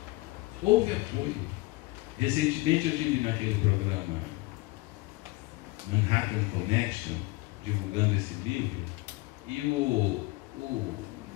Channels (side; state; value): right; quieter; 21.5 dB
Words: Houve apoio. Recentemente eu estive naquele programa Manhattan Connection, divulgando esse livro, e o